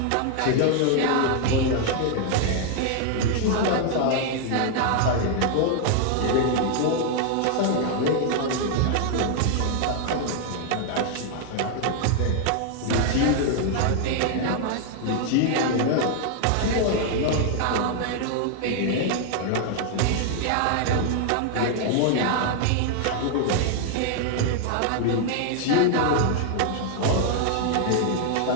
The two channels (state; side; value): different; both; correlation 0.00